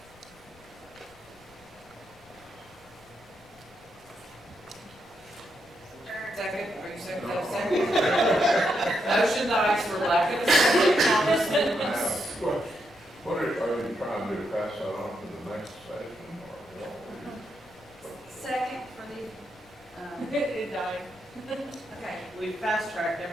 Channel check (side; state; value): left; noise; rumble, 27 dB below the sound